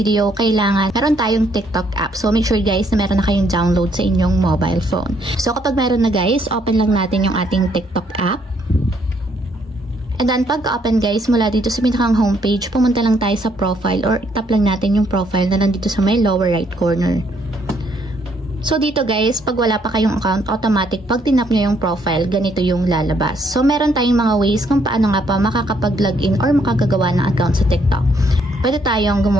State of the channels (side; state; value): both; normal; correlation 0.70